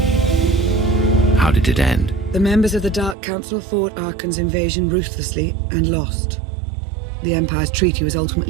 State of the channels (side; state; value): left; drops out; at 3.2 s